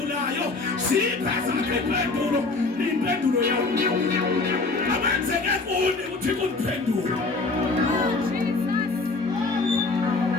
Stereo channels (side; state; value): right; quieter; 3.7 dB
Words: siyipheza impendulo yami abenzeke kuni ukuthi kundiphendula.